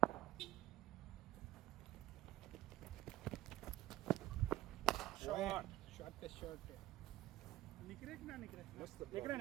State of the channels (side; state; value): left; quieter; 15.5 dB